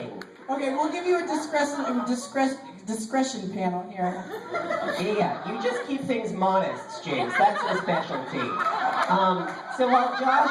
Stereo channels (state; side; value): identical; both; correlation 1.00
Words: Okay, we'll give you a discretion panel here. Yeah, you just keep things modest, Jinkx. That's your specialty. So while